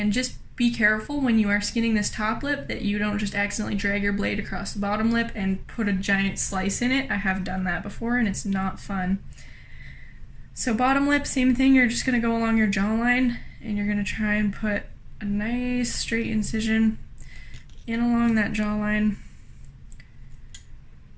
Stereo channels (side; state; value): both; identical; correlation 1.00